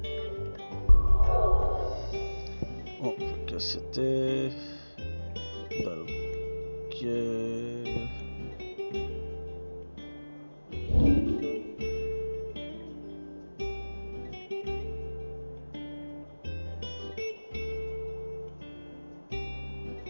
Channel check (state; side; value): inverted; both; correlation -1.00